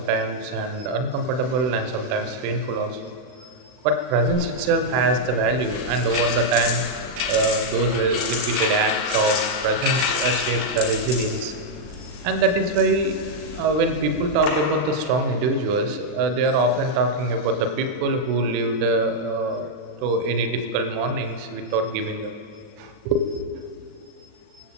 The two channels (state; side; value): late; left; 40 ms